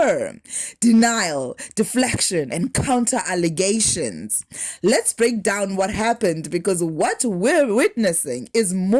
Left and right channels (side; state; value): both; identical; correlation 1.00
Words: denial, deflection, and counter-allegations. Let's break down what happened, because what we're witnessing is